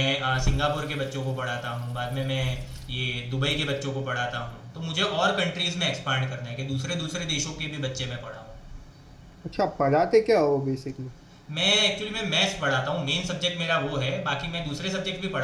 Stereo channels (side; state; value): both; identical; correlation 1.00